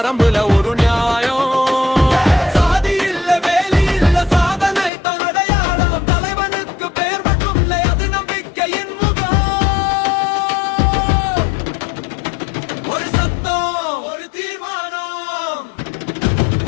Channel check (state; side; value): drops out; right; at 4.9 s